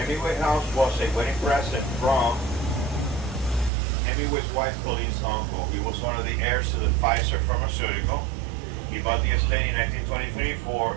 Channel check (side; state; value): left; drops out; at 3.7 s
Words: house was a wedding present from Hemingway's wife, Colleen's uncle. He was one of the heirs to the Pfizer pharmaceutical. He bought the estate in 1923 for